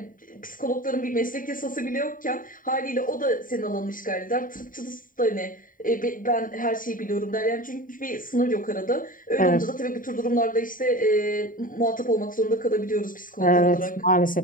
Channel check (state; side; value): late; right; 0.39 ms